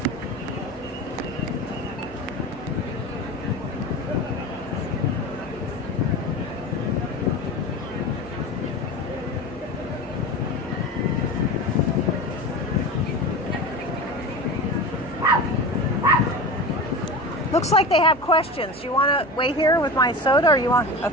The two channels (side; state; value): both; normal; correlation 0.29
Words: Looks like they have questions. You want to wait here with my soda, or you want?